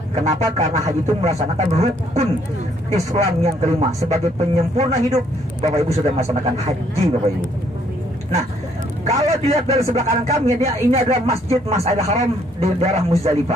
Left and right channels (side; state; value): both; normal; correlation 0.67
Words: Kenapa? Karena haji itu melaksanakan rukun Islam yang kelima. Sebagai penyempurna hidup, Bapak Ibu sudah melaksanakan haji Bapak Ibu. Nah, kalau dilihat dari sebelah kanan kami, ini adalah Masjid Mas'idil Haram di daerah